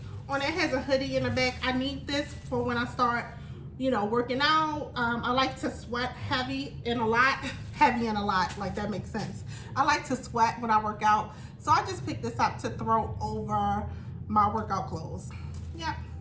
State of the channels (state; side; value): identical; both; correlation 1.00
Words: on it. It has a hoodie in the back. I need this for when I start, you know, working out. I like to sweat heavy and a lot, like that makes sense. I like to sweat when I work out. So I just picked this up to throw over my workout clothes. Yeah.